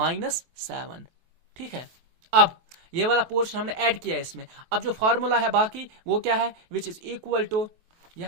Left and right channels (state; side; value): late; left; 23 ms